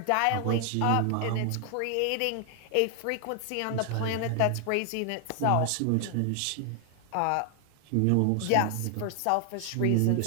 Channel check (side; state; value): both; different; correlation 0.00